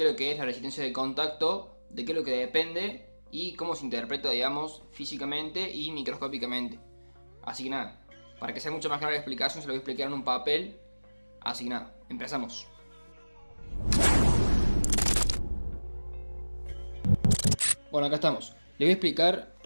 es lo que es la resistencia de contacto, de qué es lo que depende y cómo se interpreta, digamos, físicamente y microscópicamente. Así que nada, para que sea mucho más clara la explicación, se lo voy a explicar en un papel. Así que nada, empezamos. Bueno, acá estamos. Les voy a explicar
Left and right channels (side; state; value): both; inverted; correlation -1.00